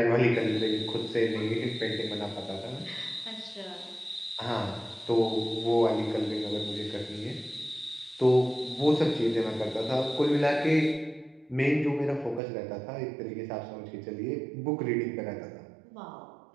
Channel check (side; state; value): left; drops out; at 12.4 s